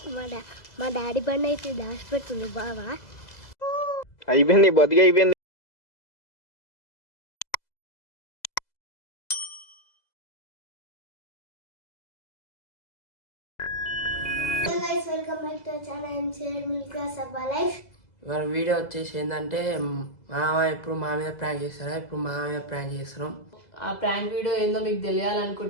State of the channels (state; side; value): late; right; 2.0 ms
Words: మా డాడీ బండి అయితే దాచిపెడుతుంది బావా. అయిపోయింది, బతికి అయిపోయింది. వెల్కమ్ బ్యాక్ టు ఛానల్ మిల్కా సబ్బా లైఫ్. ఇవాళ వీడియో వచ్చేసి ఏంటంటే మామ ఎప్పుడు మా మీద ప్రాంక్ చేస్తారా, ఇప్పుడు మా మీద ప్రాంక్ చేస్తున్నాం. ఆ ప్రాంక్ వీడియో ఏందో మీకు